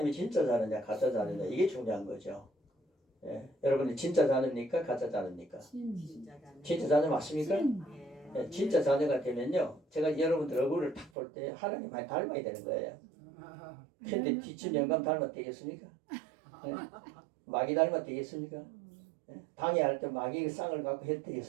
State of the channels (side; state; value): left; drops out; at 11.1 s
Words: 진짜 자녀냐 가짜 자녀냐 이게 중요한 거죠. 예. 여러분이 진짜 자녀입니까? 가짜 자녀입니까? 진짜 자녀 맞습니까? 예. 진짜 자녀가 되면요, 제가 여러분들 얼굴을 딱 볼 때 하나님 많이 닮아야 되는 거예요. 근데 뒷집 영감 닮아 되겠습니까? 예. 마귀 닮아 되겠습니까? 예. 당회할 때 마귀 쌍을 갖고 해도